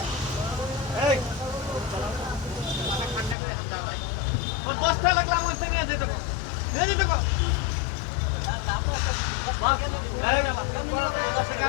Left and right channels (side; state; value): right; drops out; at 3.4 s